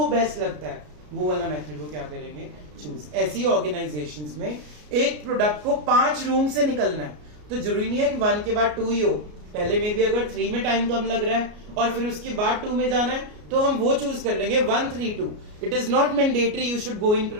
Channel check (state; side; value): late; left; 33 ms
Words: बेस्ट लगता है वो वाला मेथड वो क्या करेंगे, चूज। ऐसी ऑर्गेनाइजेशंस में एक प्रोडक्ट को 5 रूम से निकलना है, तो जरूरी नहीं है कि 1 के बाद 2 ही हो, पहले में भी अगर 3 में टाइम कम लग रहा है और फिर उसके बाद 2 में जाना है तो हम वो चूज कर लेंगे 1, 3, 2। It is not mandatory you should go in